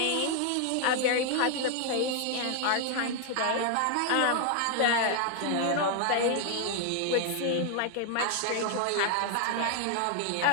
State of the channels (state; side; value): different; both; correlation 0.00